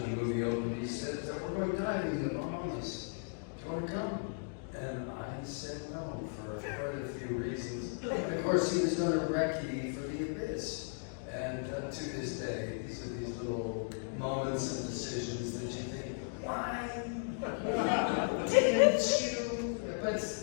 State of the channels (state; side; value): silent; right; digital silence